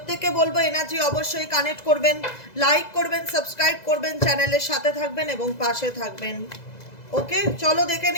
বলবো এনার্জি অবশ্যই কানেক্ট করবেন, লাইক করবেন, সাবস্ক্রাইব করবেন, চ্যানেলের সাথে থাকবেন এবং পাশে থাকবেন। ওকে, চলো দেখে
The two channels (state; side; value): late; right; 2.0 ms